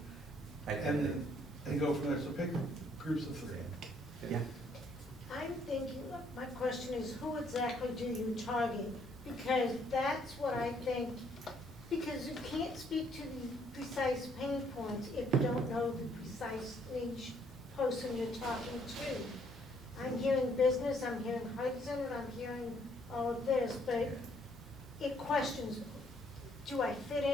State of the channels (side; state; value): both; normal; correlation 0.67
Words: And go from there, so pick groups of 3. Yeah. I'm thinking, my question is, who exactly do you target? Because that's what I think, because you can't speak to the precise pain points if you don't know the precise niche person you're talking to. I'm hearing business, I'm hearing Hudson, and I'm hearing all of this, but it questions, do I fit